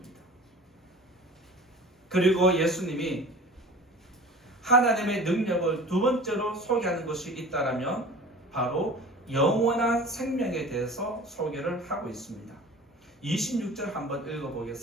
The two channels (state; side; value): normal; both; correlation 0.41